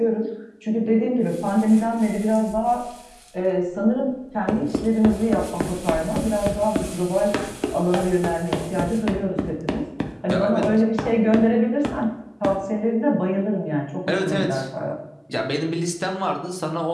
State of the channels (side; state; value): both; identical; correlation 1.00